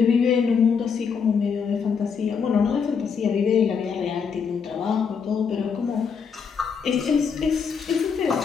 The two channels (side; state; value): right; quieter; 6.2 dB